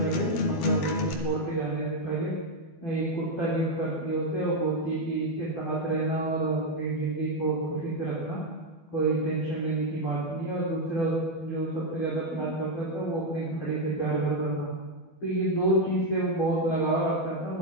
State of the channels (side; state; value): right; late; 12 ms